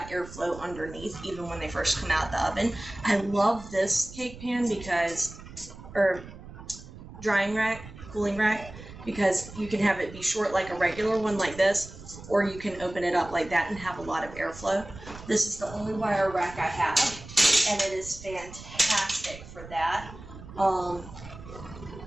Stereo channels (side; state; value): right; noise; rumble, 15 dB below the sound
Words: airflow underneath even when they first come out the oven. I love this cake pan because, or drying rack, cooling rack, because you can have it be short like a regular one like this, or you can open it up like that and have a lot of airflow. This is the only wire rack I have, and it is fantastic for that.